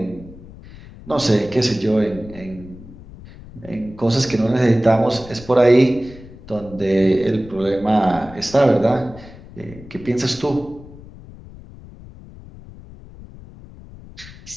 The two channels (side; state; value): left; noise; rumble, 18 dB below the sound